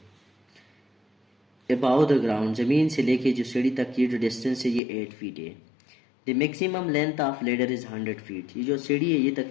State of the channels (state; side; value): drops out; right; at 4.8 s